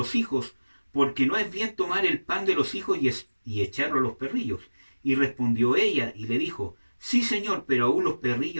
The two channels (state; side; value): inverted; both; correlation -1.00